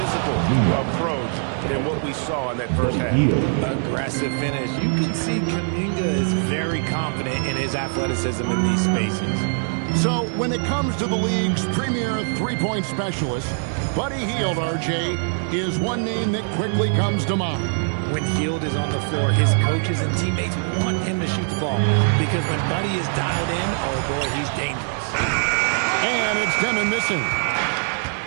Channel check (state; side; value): silent; left; 60 dB below the other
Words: approach than what we saw in that first half. Aggressive finish. You can see Kuminga is very confident in his athleticism in these spaces. So when it comes to the league's premier three-point specialist, Buddy Hield, RJ, is one name that quickly comes to mind. When Hield is on the floor, his coaches and teammates want him to shoot the ball, because when Buddy is dialed in, oh boy, he's dangerous. And it's Deming missing.